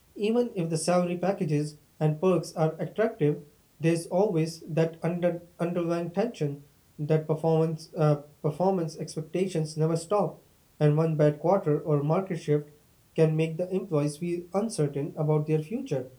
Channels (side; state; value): both; identical; correlation 1.00